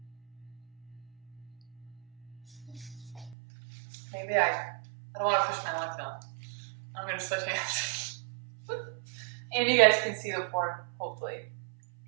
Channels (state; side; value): drops out; left; at 3.4 s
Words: Maybe I don't want to push my left on. I'm going to switch hands. And you guys can see the form, hopefully,